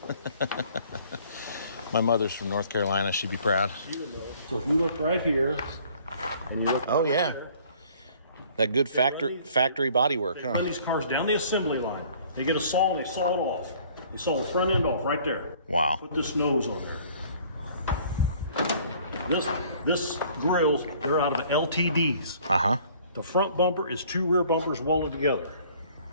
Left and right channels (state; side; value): inverted; both; correlation -0.56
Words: My mother's from North Carolina. She'd be proud. So if you look right here, and you look. Oh yeah, that good factory body work, They huh? run these cars down the assembly line. They get a saw and they saw it off. They saw the front end off right there. Wow. Put this nose on there. This grills, they're out of the LTDs. Uh-huh. The front bumper is 2 rear bumpers welded together.